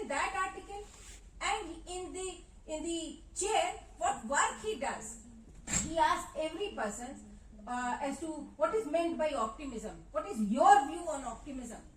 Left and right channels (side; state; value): both; identical; correlation 1.00